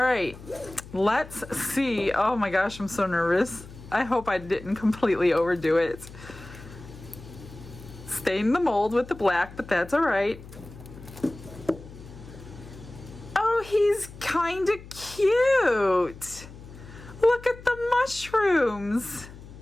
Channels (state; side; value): noise; left; hum, 17 dB below the sound